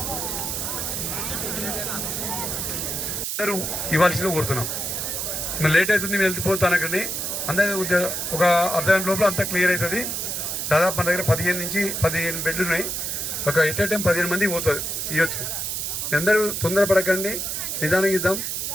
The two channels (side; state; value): right; noise; hiss, 2 dB below the sound